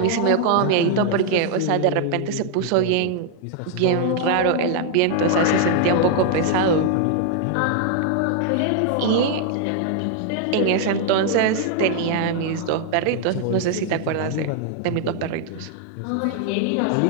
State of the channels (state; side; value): different; both; correlation 0.00